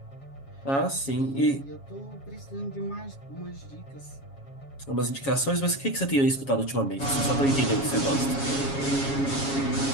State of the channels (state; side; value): late; right; 7.3 ms